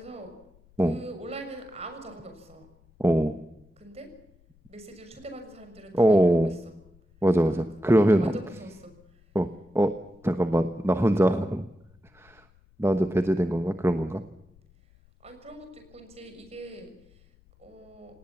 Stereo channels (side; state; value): left; noise; rumble, 30 dB below the sound